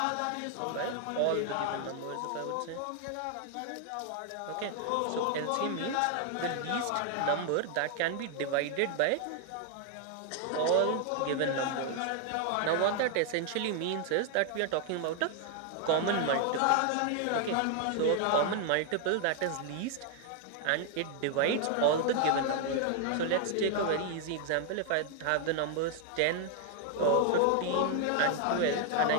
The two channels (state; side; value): different; both; correlation 0.00